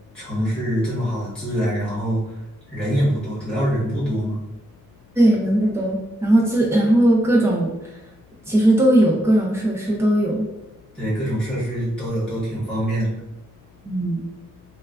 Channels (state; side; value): noise; left; hum, 29 dB below the sound